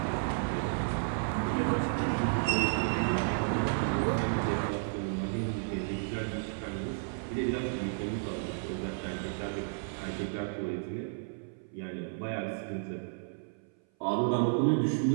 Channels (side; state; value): left; silent; 56 dB below the other